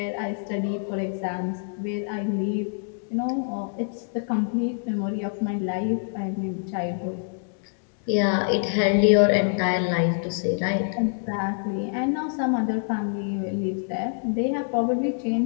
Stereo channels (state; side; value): silent; right; digital silence